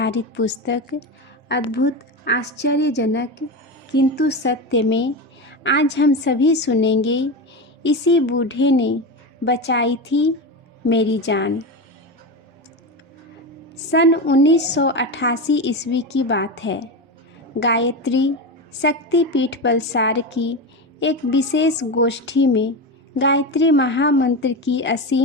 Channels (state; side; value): normal; both; correlation 0.19